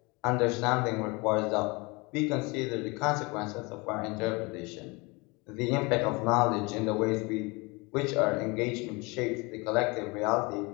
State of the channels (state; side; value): quieter; right; 26.6 dB